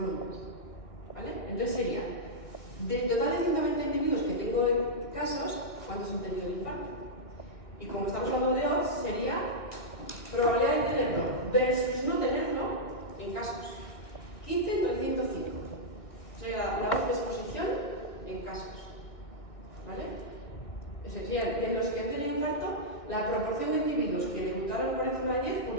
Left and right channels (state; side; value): late; right; 2.1 ms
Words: ¿Vale? Entonces sería, del total de 120 individuos que tengo en casos, ¿cuántos han tenido el infarto? Y como estamos hablando de odds, sería probabilidad de tenerlo versus no tenerlo en casos. 15 entre 105. Sería la odds de exposición en casos. ¿Vale? Sería de los que han tenido infarto, la proporción de individuos que debutaron por encima de 10 con